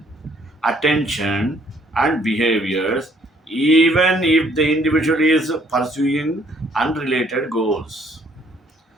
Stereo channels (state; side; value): normal; both; correlation 0.63